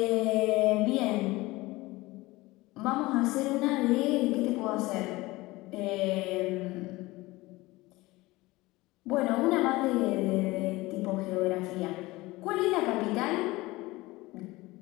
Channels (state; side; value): quieter; right; 20.4 dB